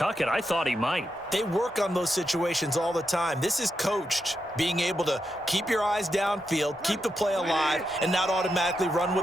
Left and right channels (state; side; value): normal; both; correlation 0.85